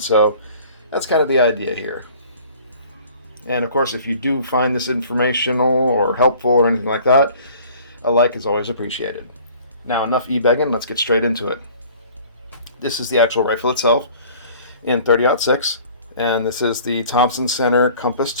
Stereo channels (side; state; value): both; inverted; correlation -0.50